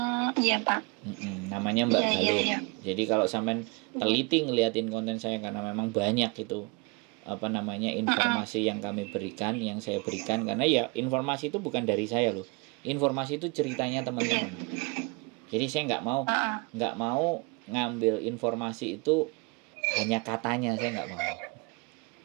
Iya Pak. Namanya Mbak Galuh. Jadi kalau sampean teliti ngeliatin konten saya, karena memang banyak itu informasi yang kami berikan, yang saya berikan, karena ya informasi itu bukan dari saya loh. Informasi itu ceritanya teman-teman. Jadi saya nggak mau ngambil informasi itu hanya katanya, saya nggak mau.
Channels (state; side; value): quieter; left; 29.8 dB